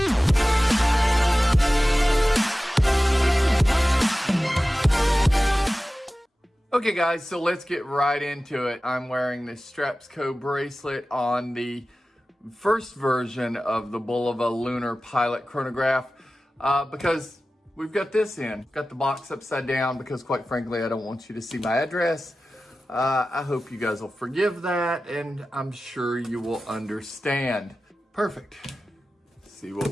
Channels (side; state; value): both; normal; correlation 0.96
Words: Okay guys, so let's get right into it. I'm wearing this STRAPSCO bracelet on the first version of the BULOVA LUNAR Pilot Chronograph because we've got this in. Got the box upside down because quite frankly, I don't want you to see my address. I hope you guys will forgive that, and I'm sure you will understand. Perfect. Let's see what